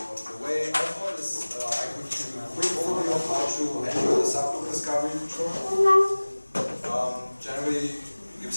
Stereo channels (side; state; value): both; inverted; correlation -1.00